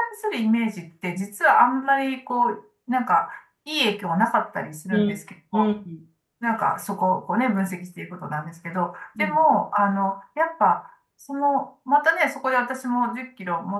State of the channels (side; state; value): both; identical; correlation 1.00